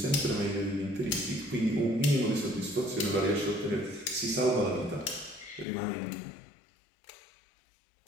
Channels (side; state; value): right; drops out; at 5.7 s